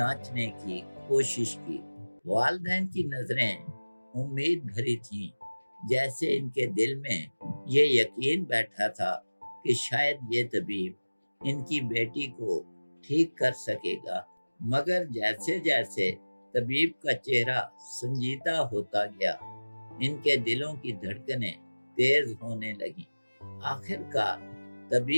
کی کوشش کی۔ والدین کی نظریں امید بھری تھیں، جیسے ان کے دل میں یہ یقین بیٹھا تھا کہ شاید یہ طبیب ان کی بیٹی کو ٹھیک کر سکے گا۔ مگر جیسے جیسے طبیب کا چہرہ سنجیدہ ہوتا گیا، ان کے دلوں کی دھڑکنیں تیز ہونے لگیں۔ آخر کار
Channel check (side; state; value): both; inverted; correlation -1.00